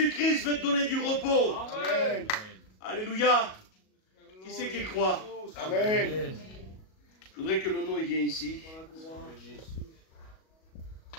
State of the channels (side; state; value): right; late; 37 ms